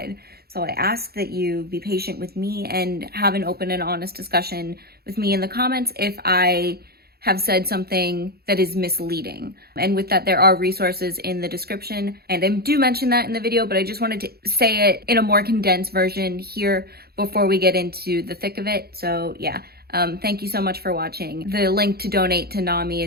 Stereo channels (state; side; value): late; left; 0.46 ms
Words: So I ask that you be patient with me and have an open and honest discussion with me in the comments if I have said something that is misleading. And with that, there are resources in the description, and I do mention that in the video, but I just wanted to say it in a more condensed version here before we get into the thick of it. So yeah, thank you so much for watching. The link to donate to NAMI